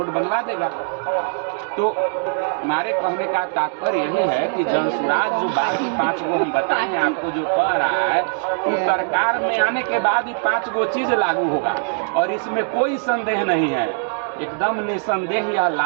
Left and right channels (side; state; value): left; silent; 65 dB below the other